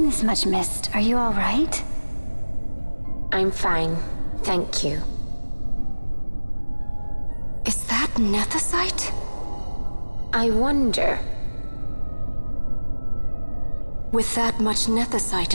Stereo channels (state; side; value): inverted; both; correlation -1.00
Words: this much mist. Are you all right? I'm fine, thank you. Is that nethicite? I wonder. With that much nethicite